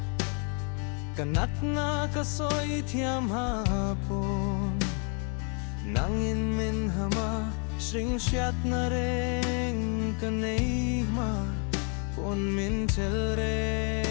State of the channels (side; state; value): right; quieter; 38.9 dB